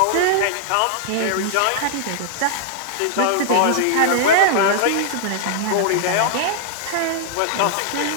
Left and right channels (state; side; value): different; both; correlation -0.01